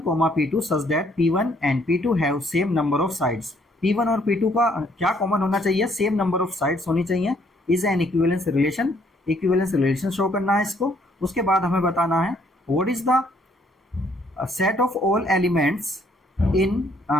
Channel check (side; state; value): both; normal; correlation 0.66